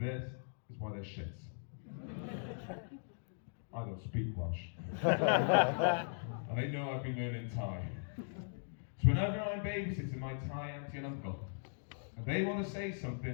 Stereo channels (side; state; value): right; silent; digital silence